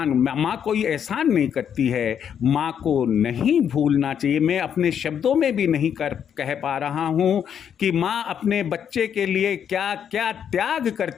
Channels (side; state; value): right; quieter; 8.4 dB